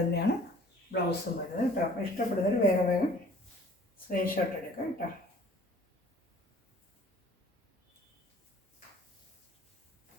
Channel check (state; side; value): normal; both; correlation 0.52